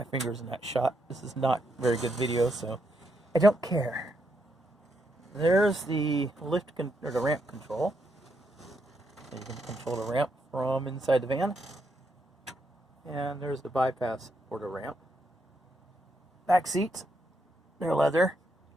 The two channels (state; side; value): normal; both; correlation 0.79